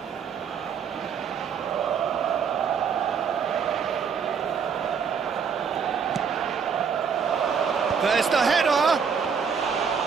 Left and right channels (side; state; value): left; quieter; 6.5 dB